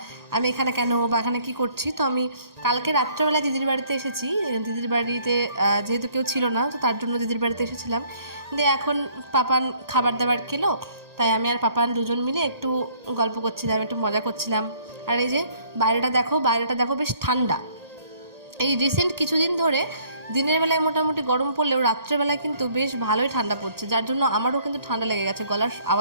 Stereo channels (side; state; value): left; late; 1.9 ms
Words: আমি এখানে কেন বা এখানে কী করছি। তো আমি কালকে রাত্রেবেলা দিদির বাড়িতে এসেছি। দিদির বাড়িতে যেহেতু কেউ ছিল না, তো তার জন্য দিদির বাড়িতে এসেছিলাম। দিয়ে এখন পাপান খাবার দাবার খেলো, তাই আমি আর পাপান দুজন মিলে একটু গল্প করছিলাম, একটু মজা করছিলাম। আর এই যে বাইরেটা দেখো বেশ ঠান্ডা। এই রিসেন্ট কিছুদিন ধরে দিনের বেলায় মোটামুটি গরম পড়লেও রাত্রেবেলায় কিন্তু বেশ ভালোই ঠান্ডা পড়ছে, যার জন্য আমারও কিন্তু ঠান্ডা লেগে গেছে। গলার